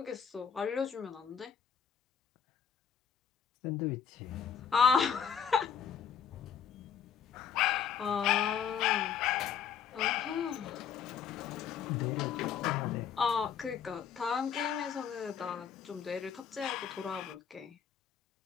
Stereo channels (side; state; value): right; quieter; 7.7 dB